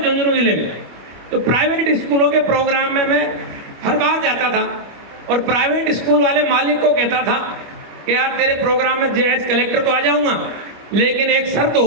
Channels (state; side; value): late; left; 25 ms